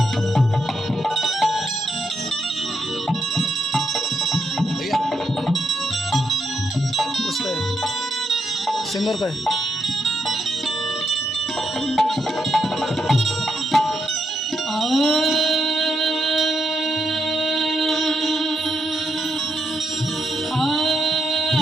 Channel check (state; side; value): normal; both; correlation 0.81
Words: सिंगर का है।